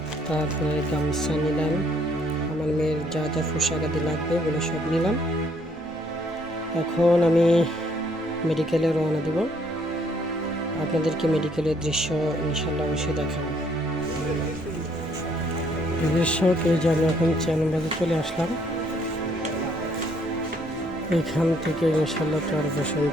তারপরে গামছা নিলাম, আমার মেয়ের যা যা পোশাক আদি লাগবে ওগুলো সব নিলাম। এখন আমি মেডিকেলে রওনা দেব। আপনাদেরকে মেডিকেলের দৃশ্য ইনশাল্লাহ অবশ্যই দেখাবো। দর্শক, এই যে আমি এখন চেয়ারবাজারে চলে আসলাম। এখান থেকে ইনশাল্লাহ চরপেশন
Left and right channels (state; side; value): normal; both; correlation 0.67